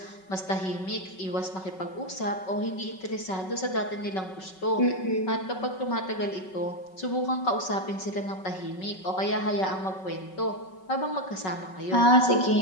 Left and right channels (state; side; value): late; right; 5.3 ms